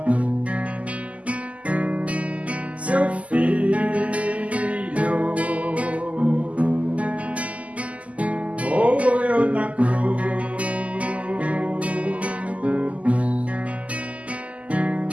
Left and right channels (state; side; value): late; left; 0.068 ms